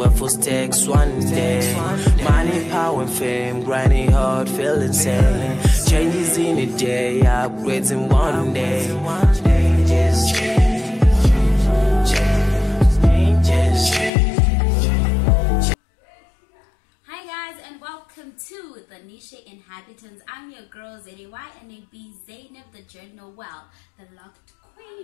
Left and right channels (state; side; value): drops out; right; at 14.1 s